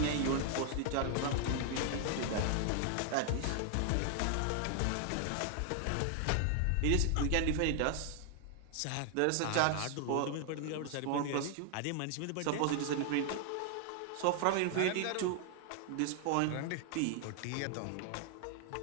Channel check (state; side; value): different; both; correlation 0.00